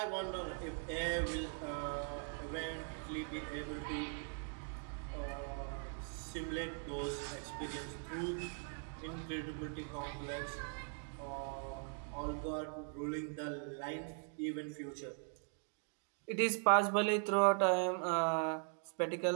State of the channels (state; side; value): silent; left; 51 dB below the other